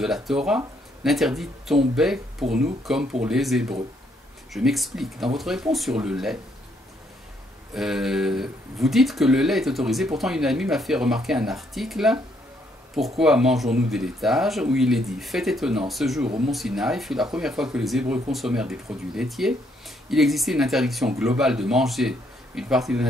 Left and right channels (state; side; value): normal; both; correlation 0.71